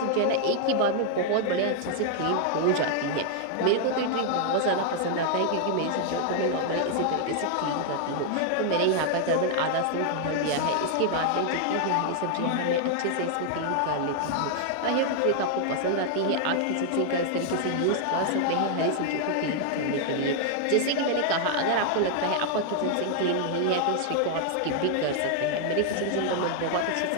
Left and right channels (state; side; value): different; both; correlation 0.00